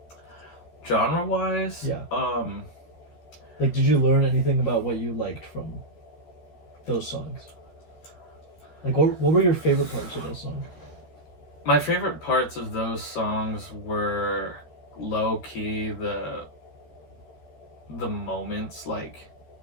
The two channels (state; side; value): late; right; 13 ms